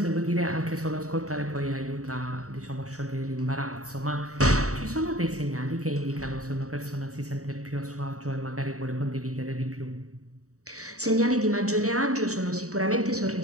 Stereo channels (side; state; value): left; late; 0.65 ms